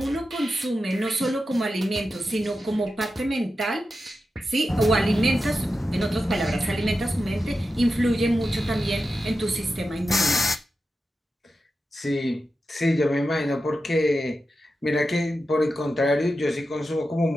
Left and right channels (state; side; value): normal; both; correlation 0.91